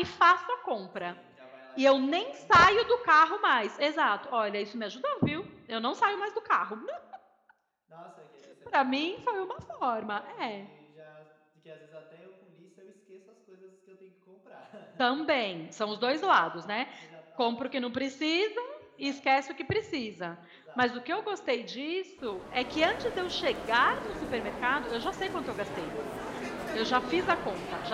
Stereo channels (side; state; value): both; identical; correlation 1.00